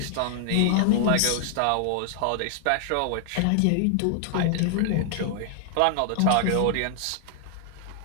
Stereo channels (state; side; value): different; both; correlation 0.00